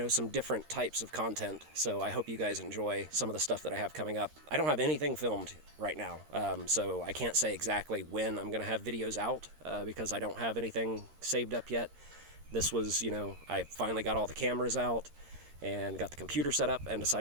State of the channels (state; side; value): late; left; 13 ms